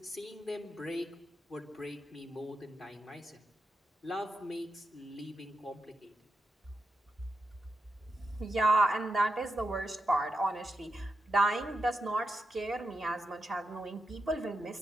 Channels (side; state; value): both; normal; correlation 0.86